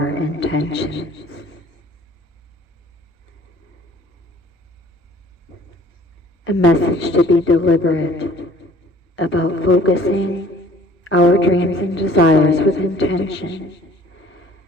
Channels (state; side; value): normal; both; correlation 0.53